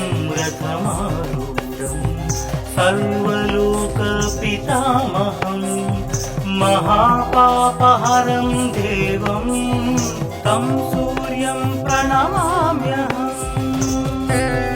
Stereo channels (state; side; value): identical; both; correlation 1.00